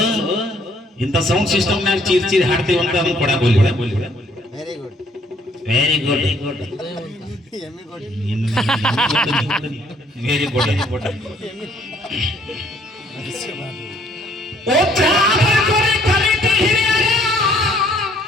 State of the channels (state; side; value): normal; both; correlation 0.63